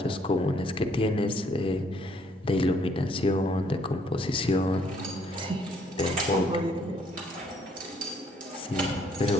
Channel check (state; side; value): normal; both; correlation 0.66